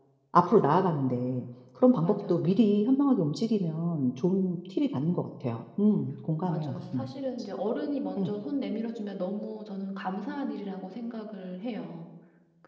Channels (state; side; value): identical; both; correlation 1.00